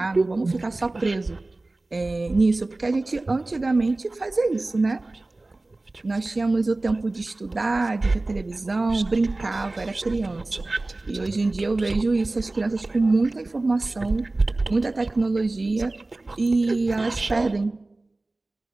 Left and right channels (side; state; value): left; quieter; 3.0 dB